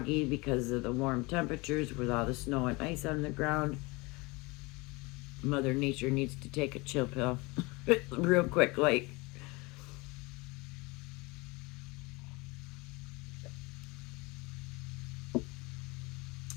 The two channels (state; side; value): quieter; right; 25.2 dB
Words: because of the warm temperatures with all the snow and ice on the ground. Mother Nature needs to take a chill pill real quick, like.